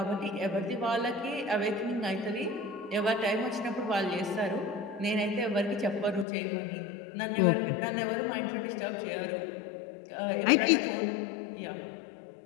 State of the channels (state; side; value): drops out; right; at 6.2 s